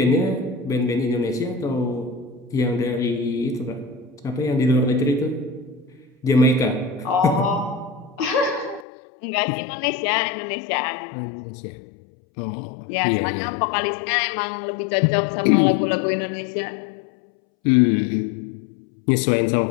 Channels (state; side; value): drops out; right; at 8.8 s